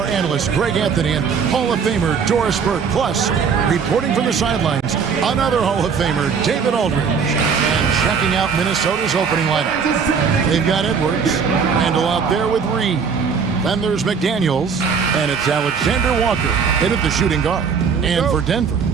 analysts Greg Anthony and Hall of Famer Doris Burke. Plus, reporting from the sidelines, another Hall of Famer, David Aldridge. And checking out Minnesota's opening lineup. They've got Edwards, Randall out there with Reed. Then there's McDaniels, and it's Alexander Walker in at the shooting guard. And for Denver,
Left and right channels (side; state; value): left; quieter; 6.1 dB